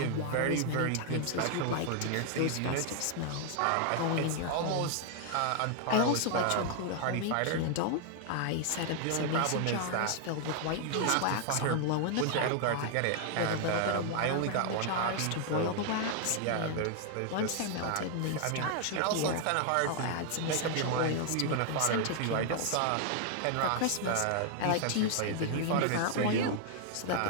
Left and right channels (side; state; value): both; different; correlation 0.00